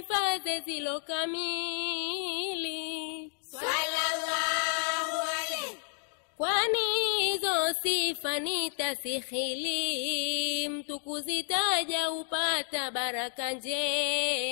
zilo kamili. Sallallahu alayhi Kwani hizo sifa nitasikhili, mtu kuzitaja upata baraka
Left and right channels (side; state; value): right; silent; digital silence